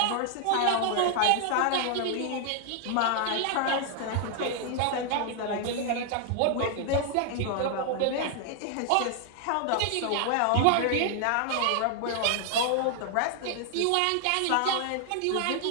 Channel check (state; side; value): different; both; correlation 0.00